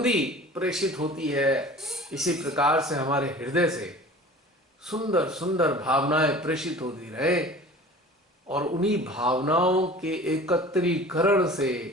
प्रेषित होती है, इसी प्रकार से हमारे हृदय से सुंदर सुंदर भावनाएं प्रेषित होती रहे, और उन्हीं भावनाओं के एकत्रीकरण से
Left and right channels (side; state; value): both; normal; correlation 0.42